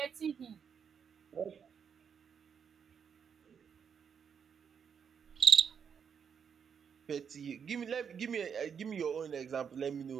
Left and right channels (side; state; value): left; quieter; 7.1 dB